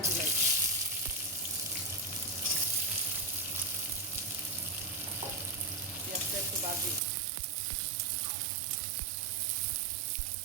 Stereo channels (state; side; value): drops out; left; at 7.0 s